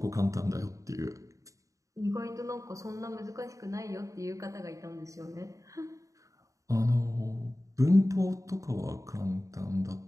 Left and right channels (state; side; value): late; left; 0.16 ms